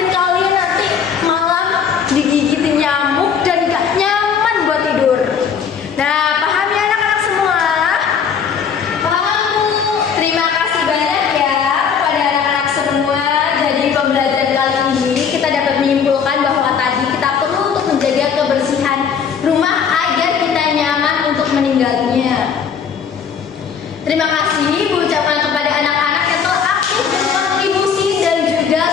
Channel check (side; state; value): right; quieter; 7.0 dB